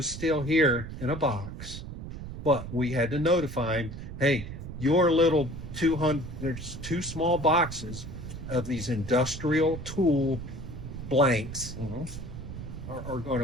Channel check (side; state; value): right; noise; rumble, 9 dB below the sound